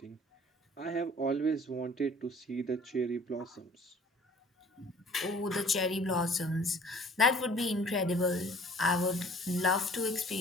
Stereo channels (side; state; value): both; normal; correlation 0.51